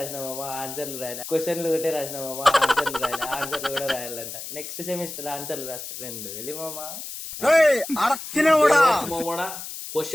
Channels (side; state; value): left; noise; hiss, 9 dB below the sound